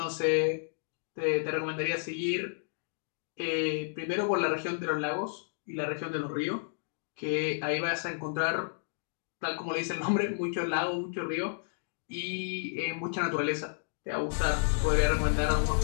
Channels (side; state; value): right; silent; digital silence